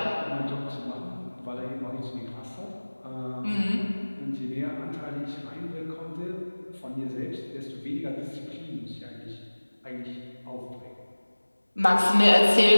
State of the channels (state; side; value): inverted; both; correlation -1.00